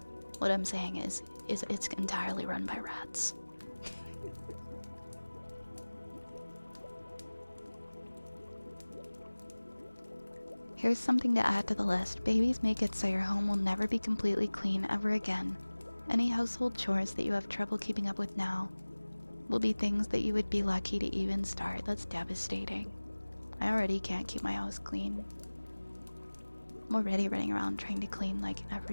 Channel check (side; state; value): both; inverted; correlation -1.00